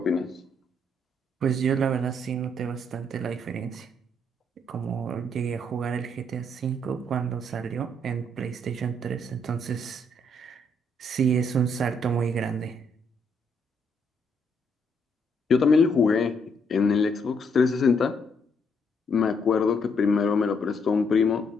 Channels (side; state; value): both; normal; correlation 0.72